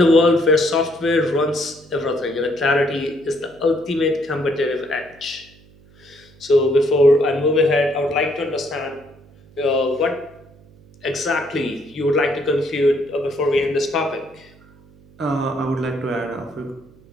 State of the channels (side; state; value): right; noise; hum, 26 dB below the sound